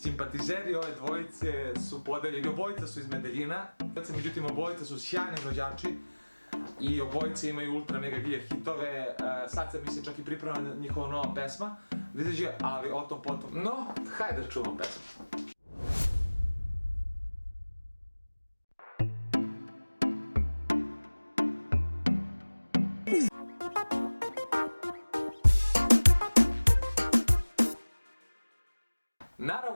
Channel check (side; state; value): both; inverted; correlation -1.00